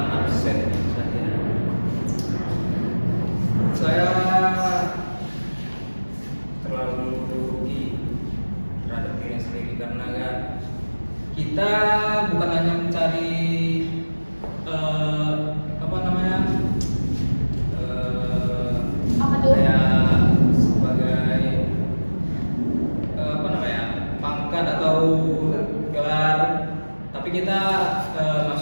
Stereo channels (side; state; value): both; inverted; correlation -1.00